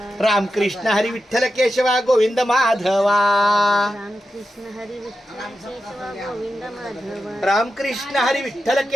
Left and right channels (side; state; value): both; normal; correlation 0.90